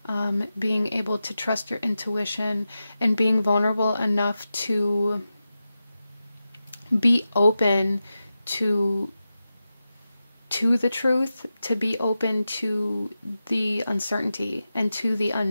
being able to trust your intuition, and being vulnerable enough to be open to the truth, to be open to the uncertainty and to the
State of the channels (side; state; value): both; inverted; correlation -0.92